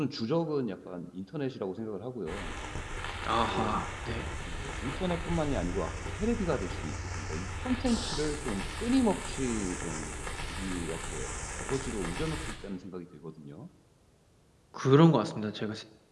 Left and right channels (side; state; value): both; identical; correlation 1.00